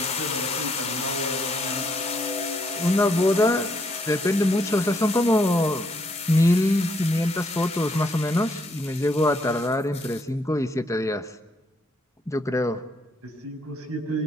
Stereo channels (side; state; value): both; normal; correlation 0.73